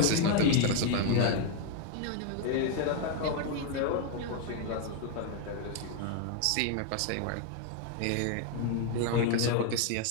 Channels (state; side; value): different; both; correlation 0.01